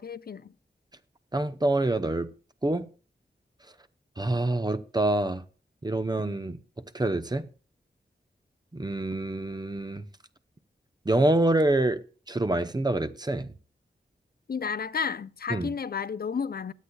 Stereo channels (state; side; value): normal; both; correlation 0.75